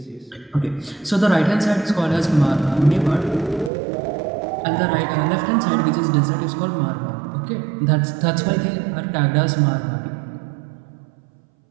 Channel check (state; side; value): drops out; left; at 3.7 s